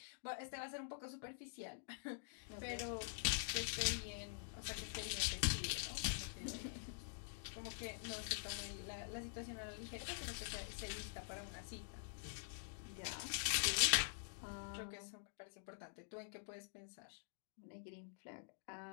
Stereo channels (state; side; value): silent; right; digital silence